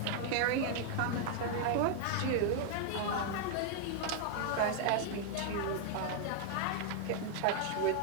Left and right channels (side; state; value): both; different; correlation 0.00